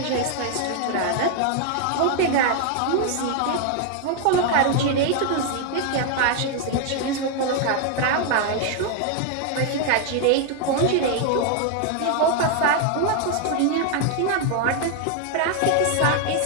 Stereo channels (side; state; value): both; different; correlation 0.00